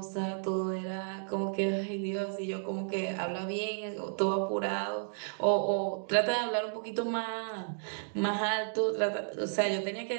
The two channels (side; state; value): left; silent; digital silence